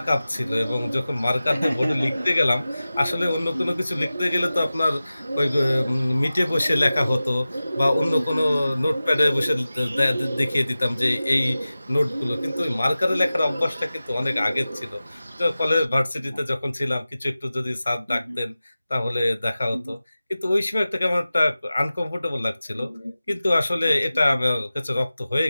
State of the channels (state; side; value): inverted; both; correlation -0.96